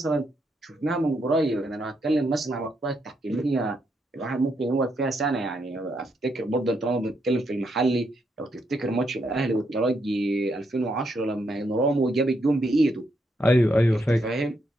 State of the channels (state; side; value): normal; both; correlation 0.78